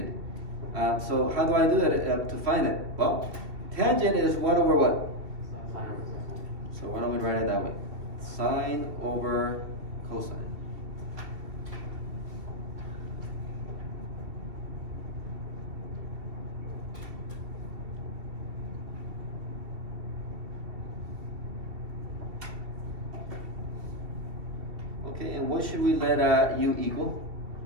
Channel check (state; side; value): late; left; 2.7 ms